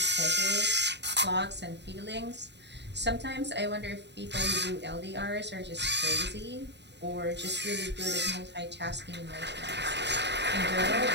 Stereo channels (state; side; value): late; left; 0.50 ms